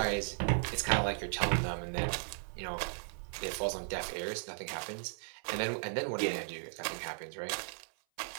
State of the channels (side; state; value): left; silent; 54 dB below the other